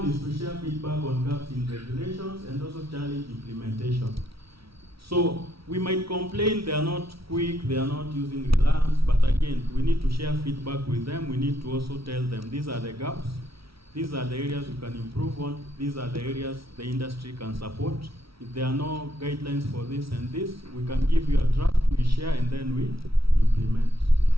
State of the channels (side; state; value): left; late; 0.75 ms